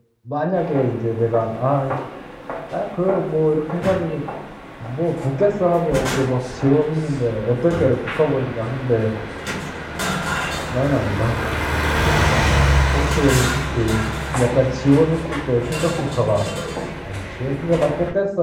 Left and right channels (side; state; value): both; identical; correlation 1.00